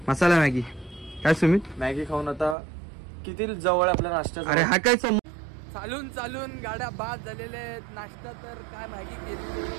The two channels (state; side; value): drops out; left; at 2.6 s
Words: मसाला मॅगी. काय सुमित, मॅगी खाऊन आता किती जवळ आपल्या नाश्ता. अरे हा काय चालून चालून गाड्या बाद झालेल्या आहेत. नाश्ता तर काय मॅगी केली.